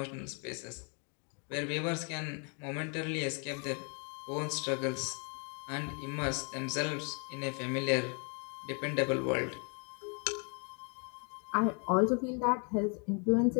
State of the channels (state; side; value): quieter; right; 37.9 dB